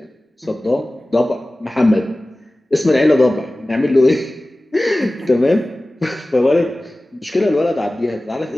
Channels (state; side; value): normal; both; correlation 0.97